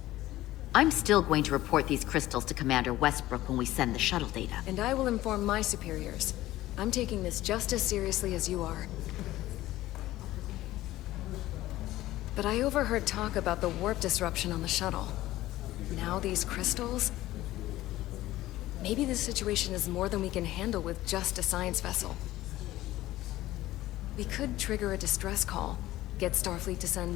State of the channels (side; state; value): right; quieter; 15.9 dB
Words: I'm still going to report these crystals to Commander Westbrook when we send the shuttle data. And I will inform my superiors. I'm taking this just as seriously as you are. But I overheard talk about the warp disruption on the shuttle. Now these crystals? Maybe this situation is more than we can handle with just a science vessel. We could trigger a distress call, get Starfleet to send